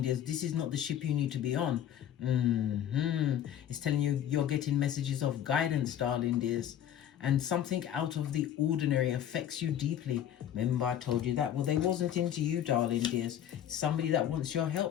dears. This is not the ship you need to be on. It's telling you you're getting messages of guidance, darling dears. And something out of the ordinary affects you deeply. Remember I told you that? Well, they wasn't into you, darling dears. It's somebody that wants your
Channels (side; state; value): right; quieter; 10.4 dB